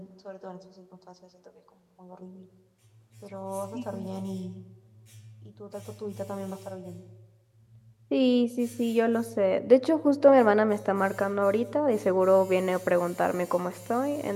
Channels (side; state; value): both; identical; correlation 1.00